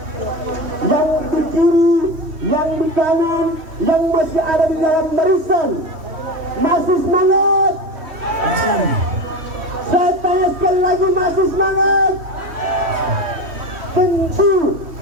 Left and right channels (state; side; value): late; left; 3.1 ms